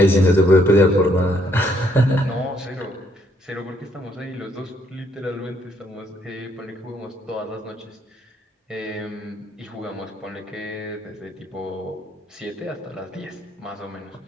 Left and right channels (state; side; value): normal; both; correlation 0.70